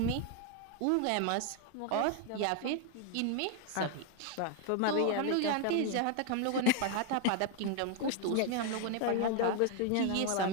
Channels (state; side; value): different; both; correlation 0.01